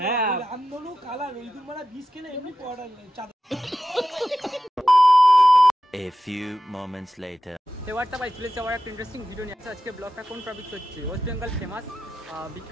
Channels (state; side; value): normal; both; correlation 0.91